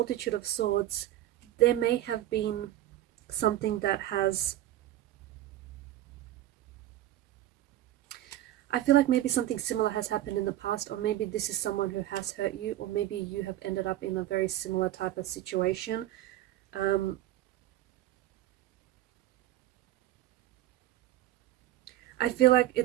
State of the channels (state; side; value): quieter; left; 13.9 dB